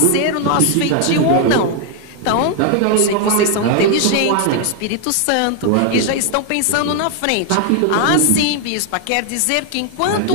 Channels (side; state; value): both; different; correlation 0.00